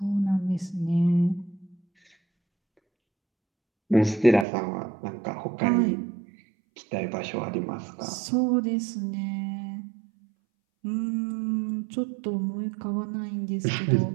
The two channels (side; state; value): left; drops out; at 4.5 s